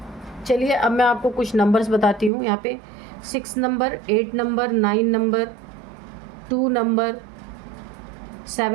चलिए अब मैं आपको कुछ नंबर्स बताती हूँ। यहाँ पे 6 number, 8 number, 9 number, 2 number,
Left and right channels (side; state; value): left; drops out; at 2.3 s